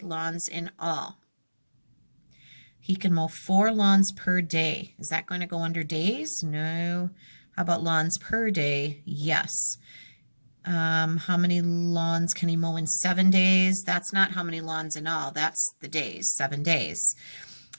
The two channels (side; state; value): both; inverted; correlation -1.00